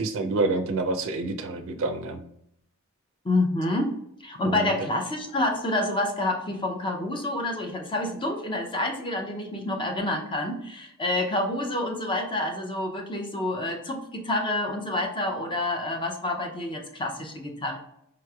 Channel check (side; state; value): both; normal; correlation 0.21